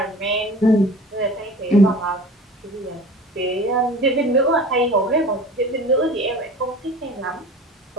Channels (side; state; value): both; normal; correlation 0.41